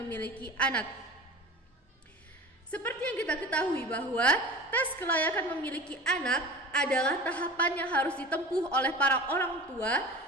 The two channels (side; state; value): both; normal; correlation 0.36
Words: anak. Seperti yang kita ketahui bahwa tes kelayakan memiliki anak adalah tahapan yang harus ditempuh oleh para orang tua